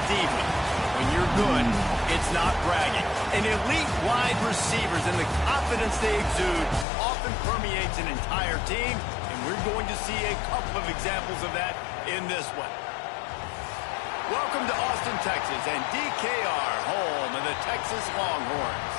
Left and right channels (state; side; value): drops out; right; at 6.9 s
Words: diva. When you're good, it's not bragging. And elite wide receivers and the confidence they exude often permeates an entire team, and we're going to see a couple of examples of that in this one. Welcome to Austin, Texas, and DKR, home of the Texas Longhorns.